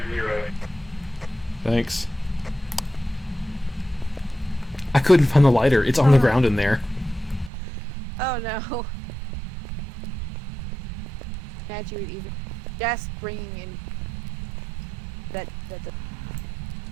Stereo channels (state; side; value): drops out; left; at 7.5 s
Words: Zero. Thanks. I couldn't find the lighter. It's on the ground in there. Oh no. Imagine you would even just bringing in that.